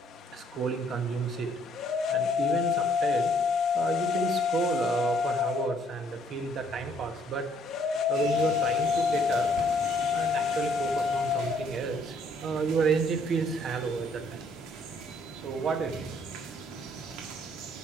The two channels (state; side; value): normal; both; correlation 0.65